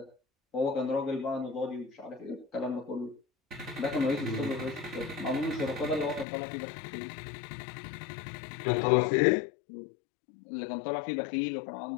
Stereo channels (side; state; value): right; drops out; at 6.2 s